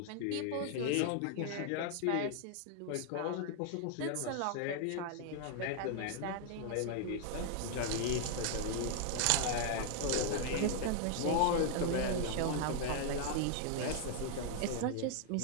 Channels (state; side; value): different; both; correlation 0.00